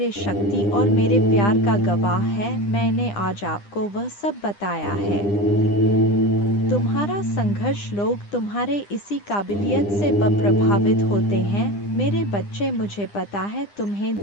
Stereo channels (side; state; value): right; late; 9.9 ms